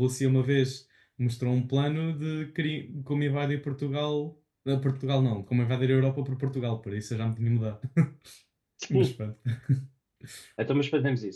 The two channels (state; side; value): identical; both; correlation 1.00